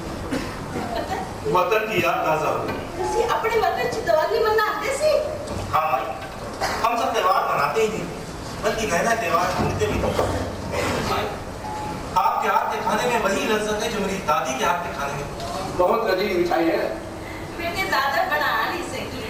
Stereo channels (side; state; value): both; identical; correlation 1.00